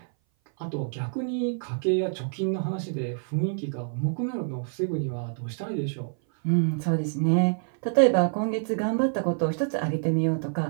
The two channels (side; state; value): left; silent; 58 dB below the other